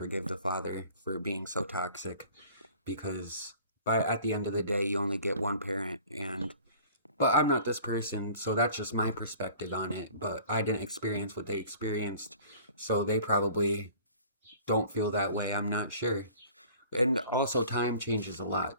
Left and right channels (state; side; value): inverted; both; correlation -0.48